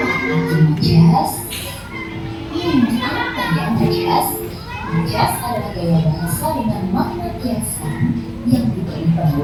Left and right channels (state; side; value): identical; both; correlation 1.00